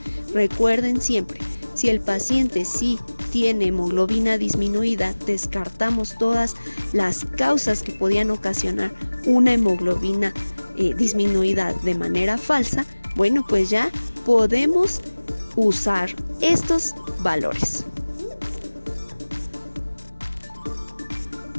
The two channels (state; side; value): inverted; both; correlation -1.00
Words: recuerden siempre, si el paciente sí tiene hemoglobina disminuida, descartamos todas las causas que podían ocasionar una hemoglobina disminuida de manera falsa. Bueno, pues ya podemos usar estos valores.